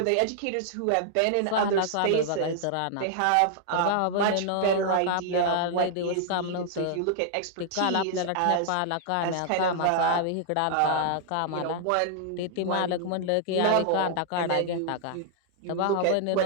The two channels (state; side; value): different; both; correlation -0.01